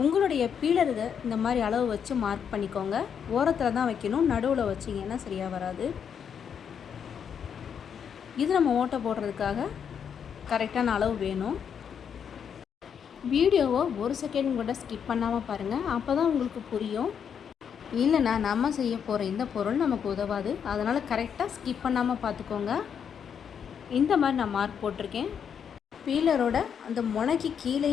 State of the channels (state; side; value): quieter; right; 7.6 dB